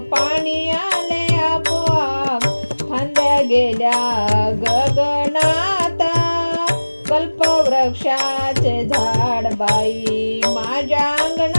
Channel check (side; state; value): both; inverted; correlation -1.00